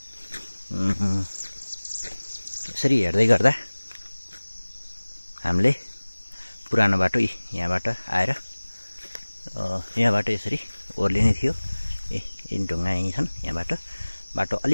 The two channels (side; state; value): both; inverted; correlation -1.00